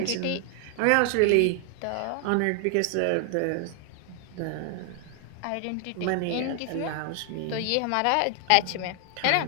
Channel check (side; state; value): both; different; correlation 0.00